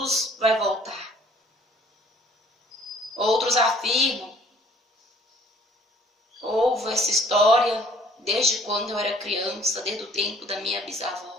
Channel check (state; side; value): normal; both; correlation 0.56